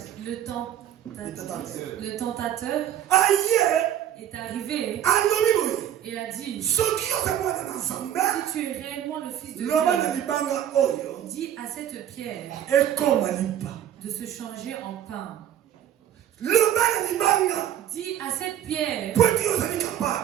tentateur est arrivé et a dit: si tu es réellement le fils de Dieu, dis à cette pierre de se changer en pain. Dis à cette pierre,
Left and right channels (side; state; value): left; quieter; 10.7 dB